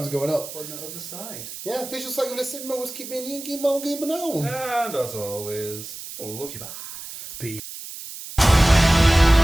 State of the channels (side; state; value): right; noise; hiss, 11 dB below the sound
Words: going up. On the other side. Yeah, visuals like you're listening. Always keep me in. Give me now. And as always, love you back.